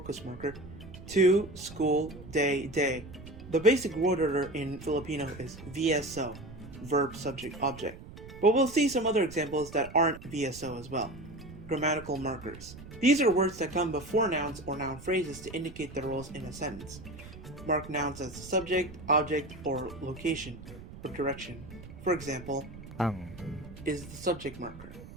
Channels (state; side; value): noise; right; rumble, 15 dB below the sound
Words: marker, to, school, day, day. The basic word order in Filipino is VSO, verb, subject, object. But we'll see some other examples that aren't VSO as well. Grammatical markers. These are words that come before nouns or noun phrases to indicate their roles in a sentence. Mark nouns as subject, object, or location, or direction. For example, Ang, is the subject marker,